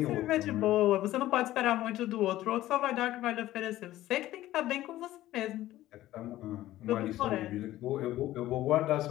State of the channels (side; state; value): right; quieter; 14.9 dB